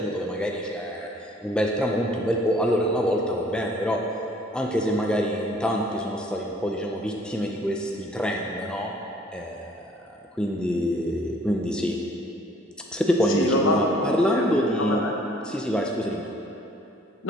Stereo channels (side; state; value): both; normal; correlation 0.56